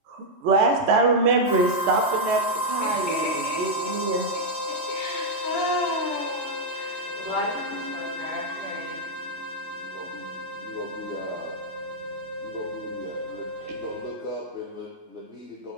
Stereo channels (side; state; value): left; late; 3.2 ms